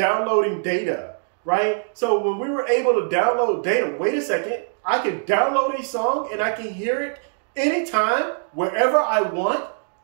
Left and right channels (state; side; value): silent; left; digital silence